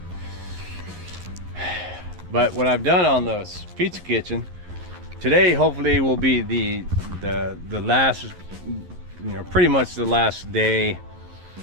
But what I've done on the pizza kitchen today, hopefully, will be the last, you know, pretty much the last day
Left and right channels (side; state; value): left; late; 11 ms